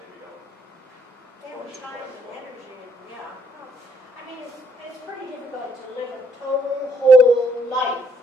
don't. They have time and energy, and yeah. I mean, it's pretty difficult to live a total whole life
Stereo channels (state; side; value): normal; both; correlation 0.69